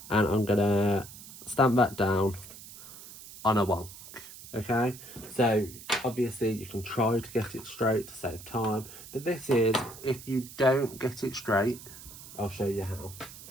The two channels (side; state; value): right; noise; hiss, 16 dB below the sound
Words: And I'm going to stamp that down on a wonk. Okay, so obviously you can try to get it straight to save time, but this is, if you don't get it straight, I'll show you how.